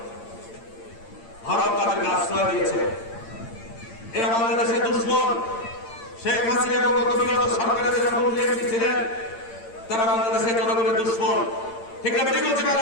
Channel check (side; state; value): right; late; 8.8 ms